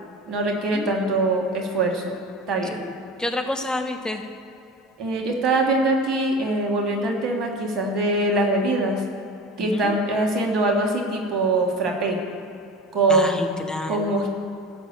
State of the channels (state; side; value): normal; both; correlation 0.32